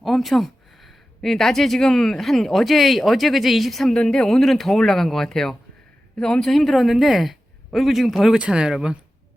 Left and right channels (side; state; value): both; normal; correlation 0.94